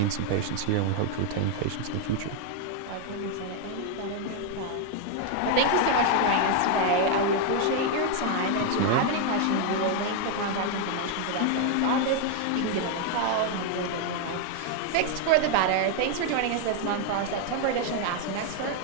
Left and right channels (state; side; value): different; both; correlation 0.01